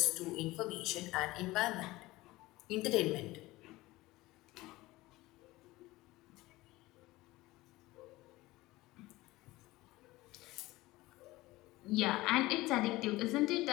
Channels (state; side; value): quieter; right; 19.2 dB